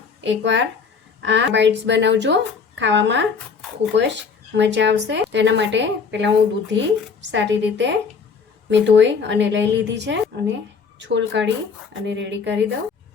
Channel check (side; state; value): right; quieter; 5.5 dB